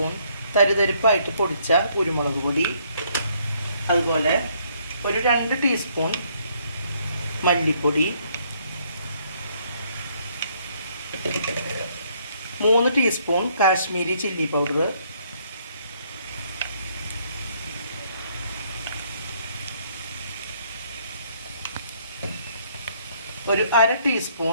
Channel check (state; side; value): inverted; both; correlation -0.67